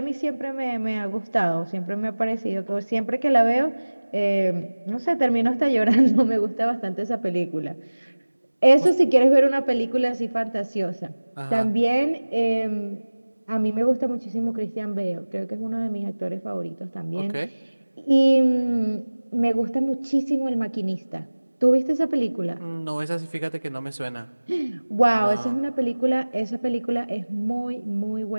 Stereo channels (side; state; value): both; inverted; correlation -1.00